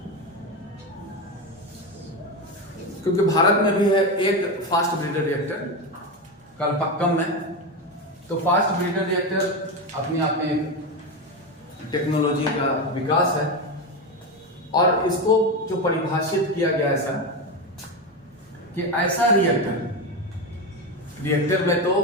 क्योंकि भारत में भी है एक फास्ट ब्रीडर रिएक्टर कलपक्कम में। तो फास्ट ब्रीडर रिएक्टर अपने आप में एक टेक्नोलॉजी का विकास है, और इसको जो परिभाषित किया गया ऐसा कि ऐसा रिएक्टर में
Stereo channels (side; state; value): both; normal; correlation 0.16